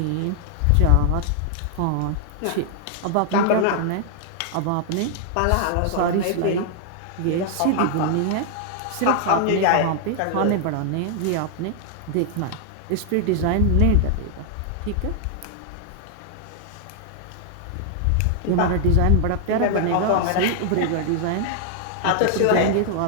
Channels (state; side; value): different; both; correlation 0.00